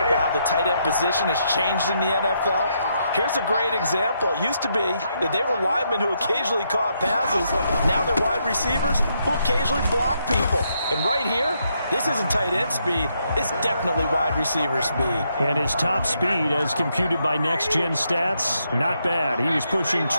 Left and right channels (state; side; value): inverted; both; correlation -0.78